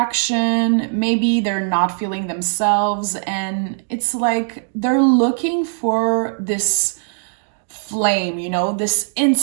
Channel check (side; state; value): left; silent; digital silence